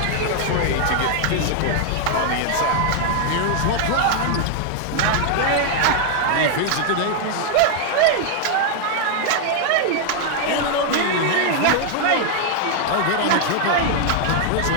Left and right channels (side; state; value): both; different; correlation 0.00